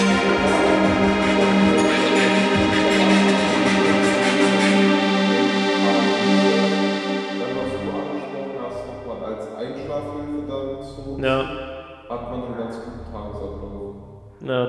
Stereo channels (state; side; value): identical; both; correlation 1.00